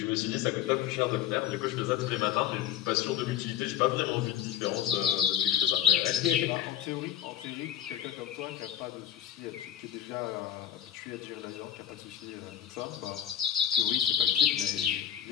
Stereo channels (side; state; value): right; quieter; 10.6 dB